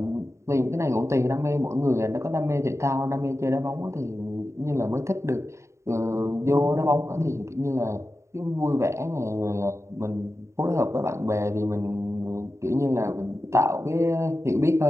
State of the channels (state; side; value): late; left; 0.14 ms